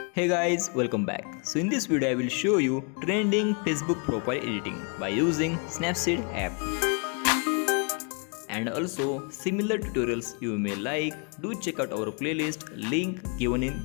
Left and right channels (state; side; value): quieter; right; 36.8 dB